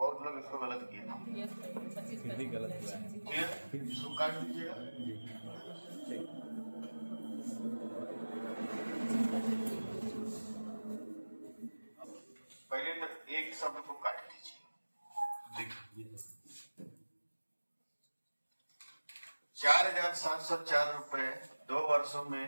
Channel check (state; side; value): inverted; both; correlation -1.00